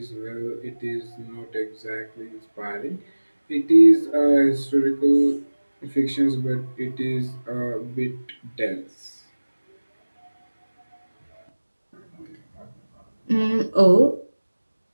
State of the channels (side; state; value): both; inverted; correlation -1.00